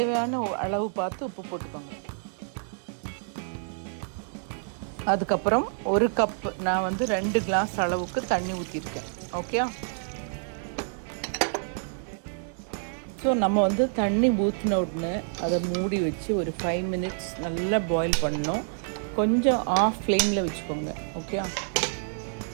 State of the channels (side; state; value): left; silent; digital silence